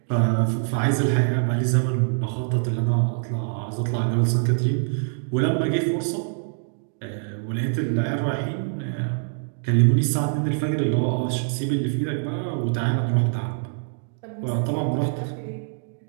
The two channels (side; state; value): left; silent; digital silence